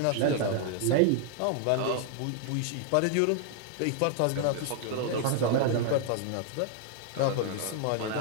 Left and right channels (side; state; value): both; different; correlation 0.00